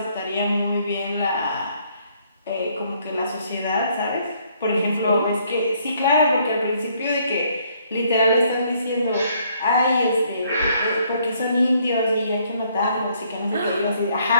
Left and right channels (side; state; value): both; inverted; correlation -0.67